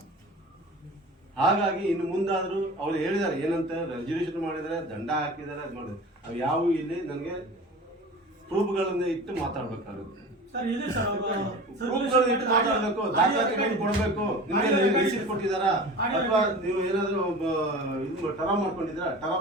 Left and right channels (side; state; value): both; normal; correlation 0.37